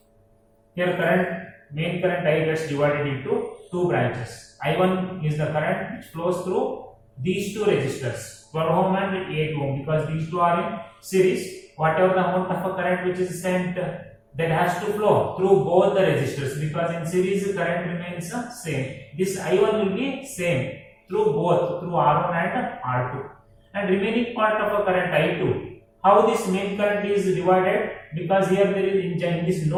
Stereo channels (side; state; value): both; identical; correlation 1.00